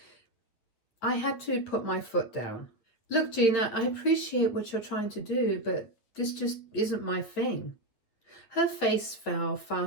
I had to put my foot down. "Look, Gina, I appreciate what you're trying to do, but this just isn't my thing." Her face fell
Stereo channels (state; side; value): late; right; 9.1 ms